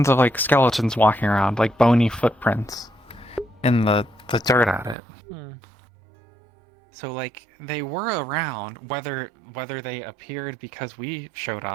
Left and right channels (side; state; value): left; drops out; at 5.0 s